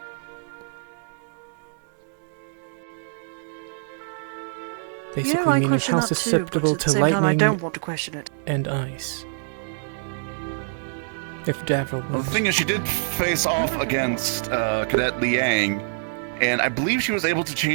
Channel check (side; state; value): left; silent; 62 dB below the other